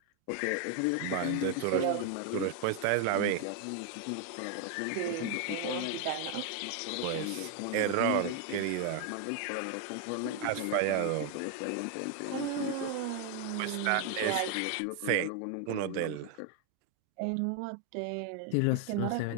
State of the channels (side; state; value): both; different; correlation 0.01